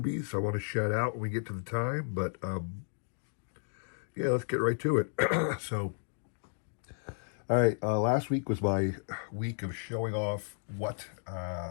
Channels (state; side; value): silent; right; digital silence